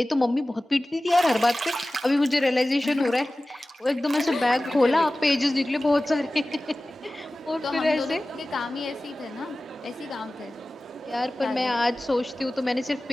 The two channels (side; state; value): both; normal; correlation 0.97